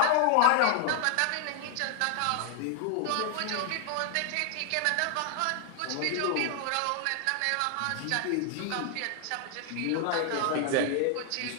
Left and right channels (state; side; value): different; both; correlation 0.00